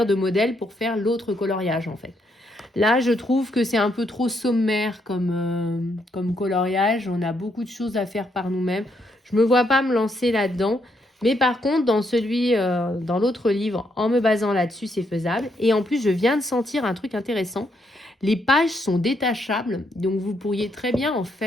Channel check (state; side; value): normal; both; correlation 0.76